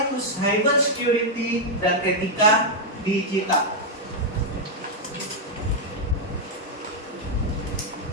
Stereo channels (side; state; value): both; normal; correlation -0.02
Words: itu cyber security dan etika digital.